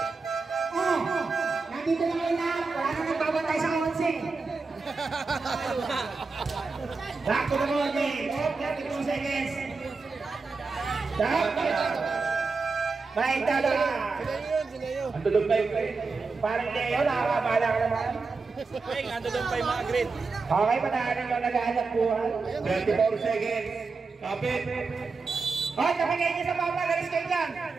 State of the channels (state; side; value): quieter; left; 4.3 dB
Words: Nandito lang kayo lahat. Wala nang nagbabato. tayo sa 11. Back to the ball game. 32 seconds. Baik tala. Ang tulog na yung parang Leo, nakakabala ka naman. Ando doon pa yung mga green. Okay, patahanan lang nag-aanap buhay. 24 seconds. Kapit. Hoy, kapagay niyo sa baba, galis kayo dyan.